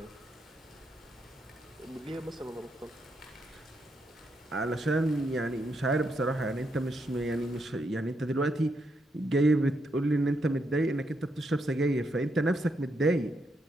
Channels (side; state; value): both; normal; correlation 0.79